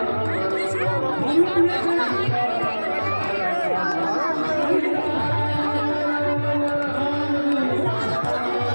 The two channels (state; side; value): inverted; both; correlation -1.00